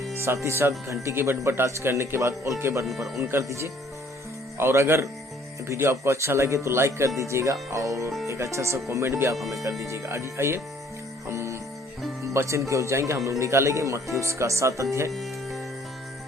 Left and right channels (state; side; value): normal; both; correlation 0.59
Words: साथ ही साथ घंटी के बटन पर टच करने के बाद ऑल के बटन पर ऑन कर दीजिए। और अगर वीडियो आपको अच्छा लगे तो लाइक कर दीजिएगा और एक अच्छा सा कमेंट भी आप हमें कर दीजिएगा। आइए हम वचन की ओर जाएंगे। हम लोग निकालेंगे मत्ती उसका 7 अध्याय